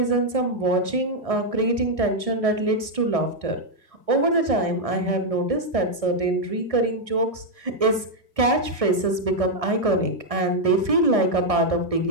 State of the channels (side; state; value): left; late; 1.6 ms